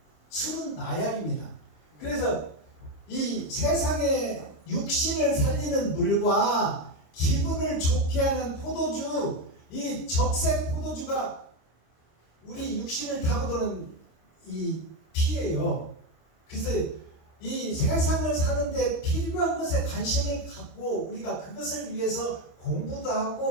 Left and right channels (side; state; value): right; late; 26 ms